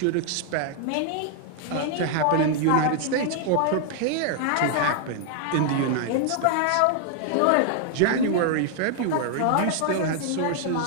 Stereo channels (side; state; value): both; different; correlation 0.00